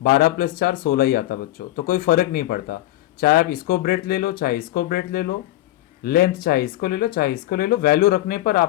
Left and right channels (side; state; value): right; quieter; 15.6 dB